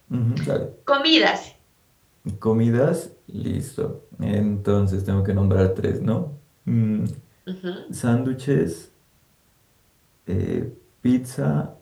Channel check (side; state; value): both; identical; correlation 1.00